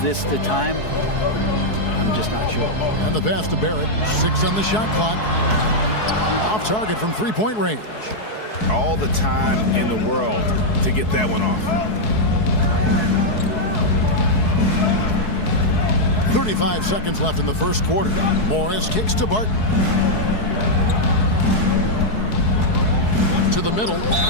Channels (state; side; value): late; right; 4.7 ms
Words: the time? I'm just not sure. And the pass to Barrett. 6 on the shot clock. Off target from three-point range. All the time in the world to get that one off. 35 seconds left in the first quarter. Morris kicks to Barton. To the middle